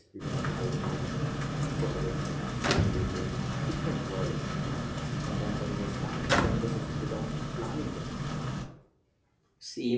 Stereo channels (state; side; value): identical; both; correlation 1.00